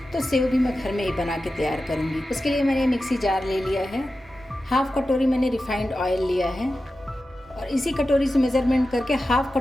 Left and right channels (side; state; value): both; normal; correlation 0.93